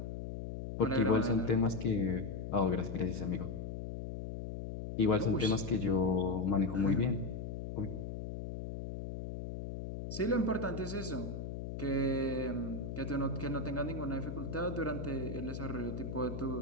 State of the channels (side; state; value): left; noise; hum, 6 dB below the sound